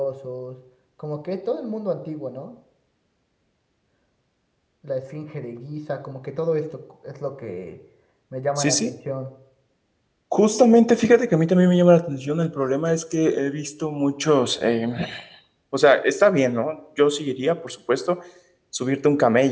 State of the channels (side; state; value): both; identical; correlation 1.00